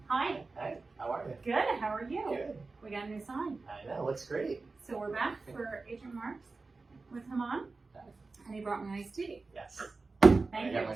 Hi. Hey, how are you? Good. How are you? Good. We got a new sign. I know, looks great. So we're back for Agent Marks with Haman, and he brought me iced tea. Yes. Thank I you. got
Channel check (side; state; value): left; quieter; 3.8 dB